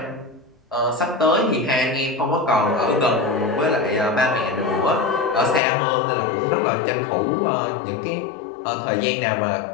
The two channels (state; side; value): drops out; right; at 5.6 s